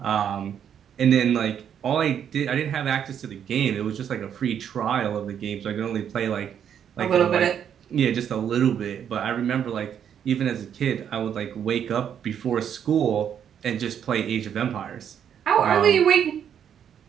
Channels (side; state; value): left; quieter; 8.8 dB